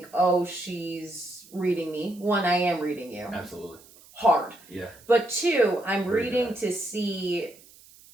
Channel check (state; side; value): noise; right; hiss, 24 dB below the sound